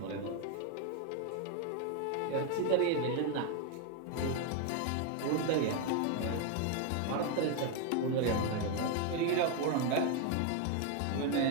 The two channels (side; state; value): both; different; correlation 0.01